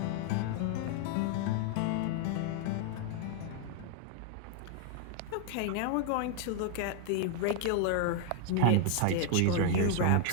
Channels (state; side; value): different; both; correlation 0.00